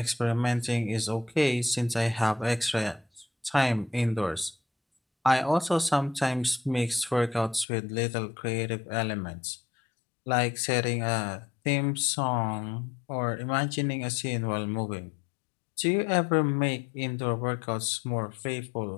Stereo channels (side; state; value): right; drops out; at 7.7 s